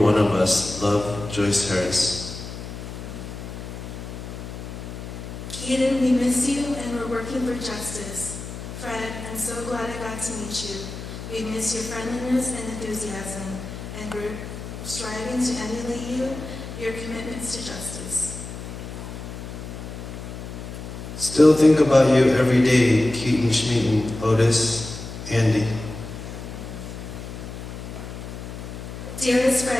of us. Love, Joyce Harris. Keaton, we miss you and we're working for justice. Fred, I'm so glad I got to meet you. We miss your friendliness and enthusiasm, and we're striving to emulate you, your commitments to justice. Still think about you every day, Keaton, Schmeaton, Otis, Andy. Dearest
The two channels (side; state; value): left; noise; hum, 10 dB below the sound